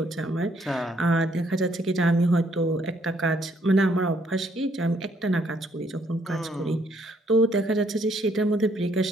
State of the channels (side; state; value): both; normal; correlation 0.68